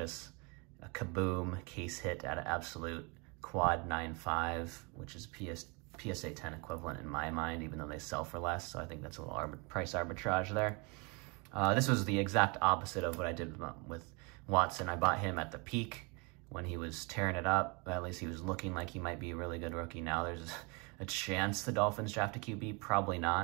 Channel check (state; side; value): quieter; left; 30.6 dB